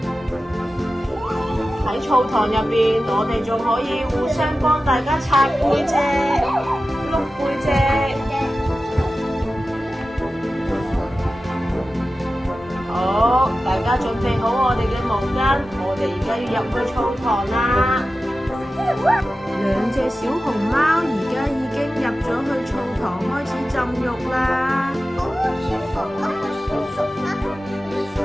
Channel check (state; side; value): normal; both; correlation 0.94